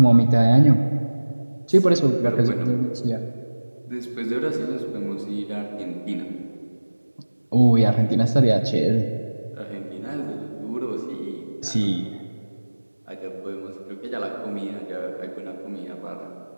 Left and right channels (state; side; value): inverted; both; correlation -1.00